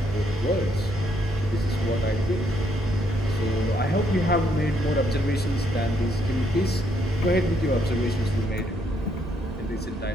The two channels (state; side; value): normal; both; correlation 0.72